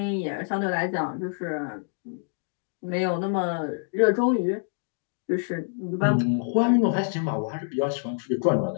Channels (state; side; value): silent; right; digital silence